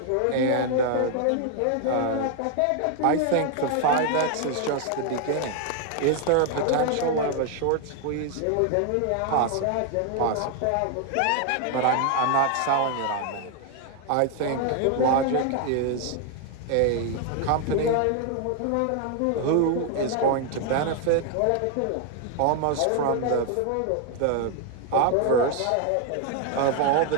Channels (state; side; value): different; both; correlation 0.01